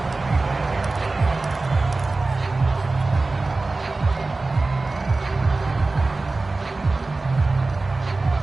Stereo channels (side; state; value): left; quieter; 3.4 dB